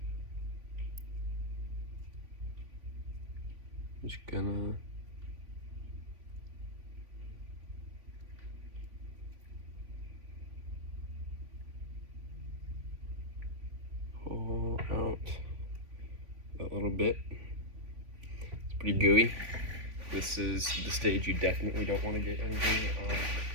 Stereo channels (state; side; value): late; left; 3.5 ms